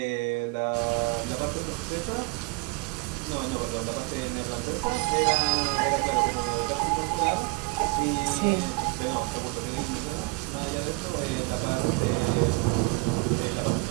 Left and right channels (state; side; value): quieter; left; 25.9 dB